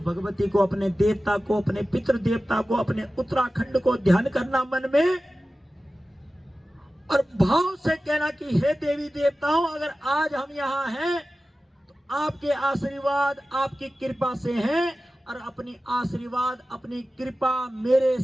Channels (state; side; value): normal; both; correlation 0.95